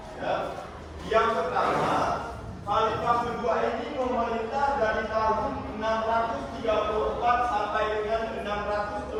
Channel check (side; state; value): both; identical; correlation 1.00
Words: Ya. Yang pertama, khalifah kedua ini memerintah dari tahun